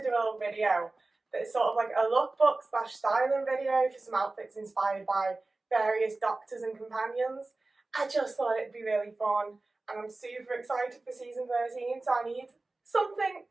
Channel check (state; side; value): quieter; left; 3.2 dB